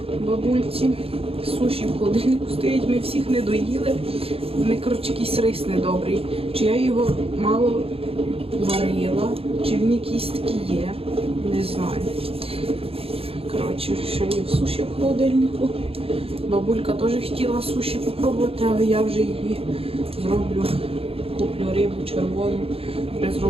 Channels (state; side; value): late; left; 0.28 ms